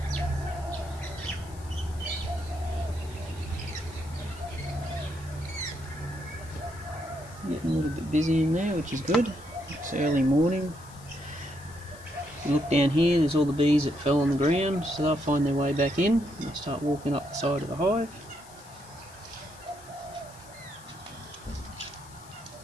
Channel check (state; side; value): noise; left; hiss, 21 dB below the sound